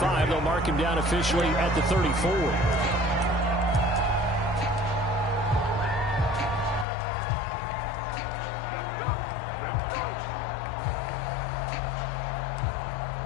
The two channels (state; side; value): drops out; right; at 6.9 s